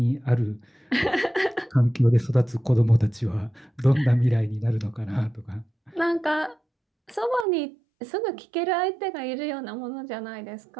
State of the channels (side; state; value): left; drops out; at 7.5 s